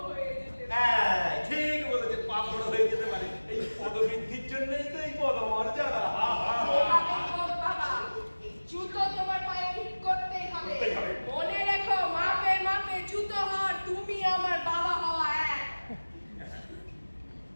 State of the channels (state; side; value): inverted; both; correlation -1.00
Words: হয়ে যেতে পারে হ্যাঁ, ঠিক বলেছেন, পা বড় হয়ে যেতে পারে। এই পদবৃদ্ধির জন্যই তো এই পদমর্যাদা। হা হা হা। সেভাবেই হোক বাবা জুতো তোমার পায়ে ঠিক করতেই হবে করতেই হবে। মনে রেখো মাপে মাপে জুতো হওয়ার তুমি আমার বাবা হওয়া এক